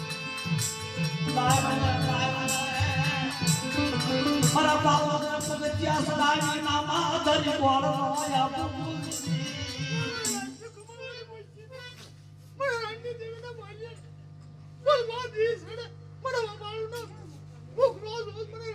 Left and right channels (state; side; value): identical; both; correlation 1.00